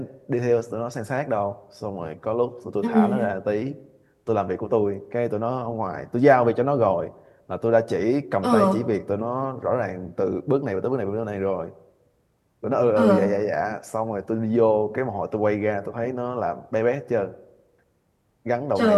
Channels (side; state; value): both; identical; correlation 1.00